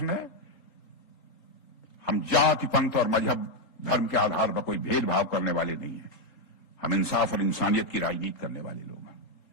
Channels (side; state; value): right; late; 3.9 ms